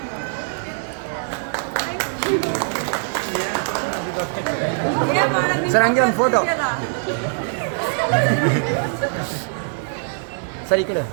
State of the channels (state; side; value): silent; left; digital silence